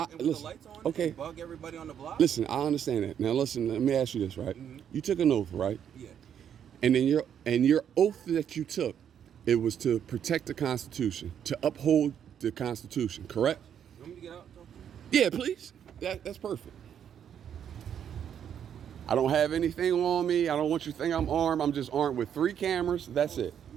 and with listen. the lights on Okay. and bug everybody on the block? Listen, I understand that. Now listen, let me ask you this, right? Mm-hmm. You took an oath, right? Yeah. And then your oath that you took, it was to protect the Constitution, to uphold the Constitution, correct? You want me to get out and talk to you? Yeah, please. That's perfect. I don't have anything on me. I don't want you to think I'm armed. I'm just armed with 3 cameras. That's it. I'm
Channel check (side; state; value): left; quieter; 8.9 dB